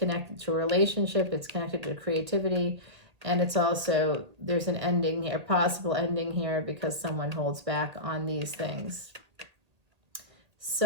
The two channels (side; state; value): left; late; 1.8 ms